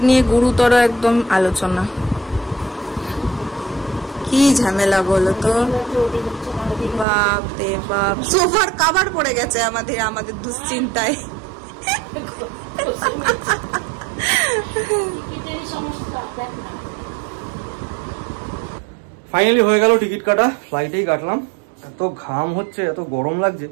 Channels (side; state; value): left; drops out; at 7.1 s